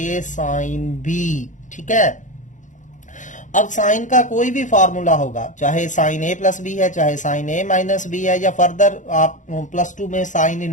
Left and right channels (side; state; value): right; late; 0.36 ms